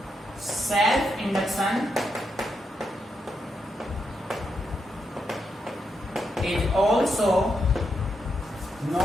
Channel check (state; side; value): normal; both; correlation 0.82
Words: self induction is also